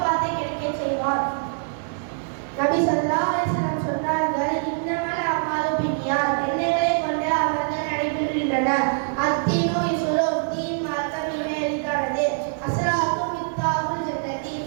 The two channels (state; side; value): silent; left; 63 dB below the other